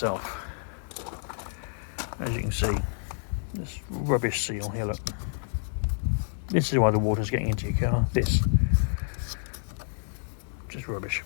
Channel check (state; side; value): silent; right; digital silence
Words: As you can see, this rubbish seal here, look. This is why the water's getting into your car, this. Just rubbish.